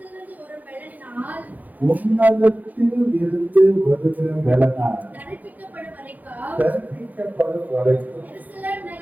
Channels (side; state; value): left; late; 0.081 ms